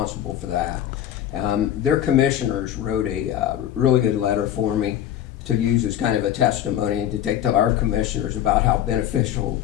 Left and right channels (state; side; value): quieter; right; 11.1 dB